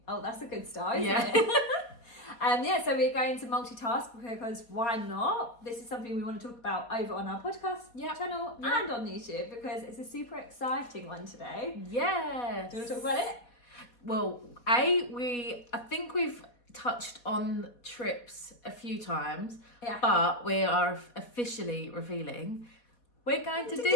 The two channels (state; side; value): late; right; 4.2 ms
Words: oh, that's a good start, isn't Yeah. it? So we're going to multitask because why not? This is something we want to talk about over on our podcast channel and on YouTube because it's a super exciting one today. Yes. Do you want to talk about it? Well, I think we've touched on trips a few times, but we are officially revealing we're going to